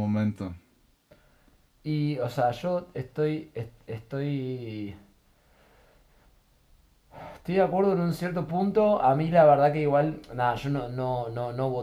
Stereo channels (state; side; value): identical; both; correlation 1.00